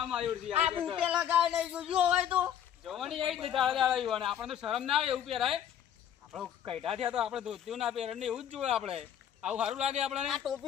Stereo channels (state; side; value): quieter; right; 9.8 dB